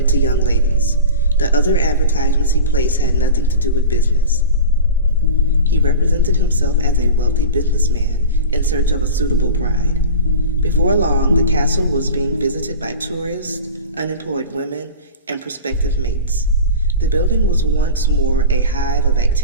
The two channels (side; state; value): both; inverted; correlation -0.32